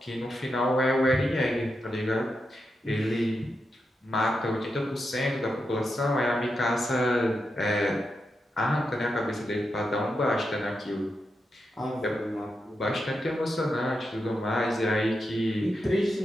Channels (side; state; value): both; normal; correlation 0.86